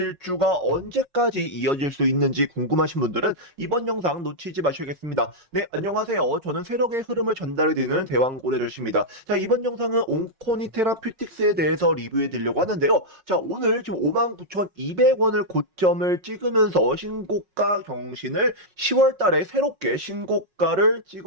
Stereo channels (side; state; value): left; late; 5.4 ms